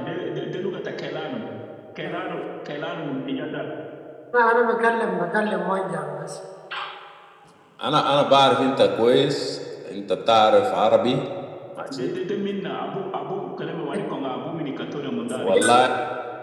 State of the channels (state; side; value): identical; both; correlation 1.00